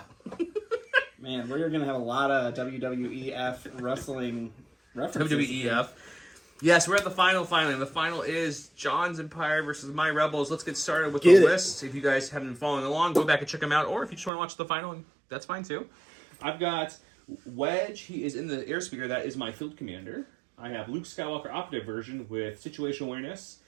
Man, we're going to have a lot of WWEF wrestling references. WWEF. Yes, we're at the final finally. The final is John's Empire versus My Rebels. Let's get started with the list. If you guys haven't been following along, go back and check them out. Or if you just want to watch the final, that's fine too. I've got Wedge. He is in the airspeeder. That is my field commander. I have Luke Skywalker operative version with situational awareness,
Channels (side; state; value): left; drops out; at 14.3 s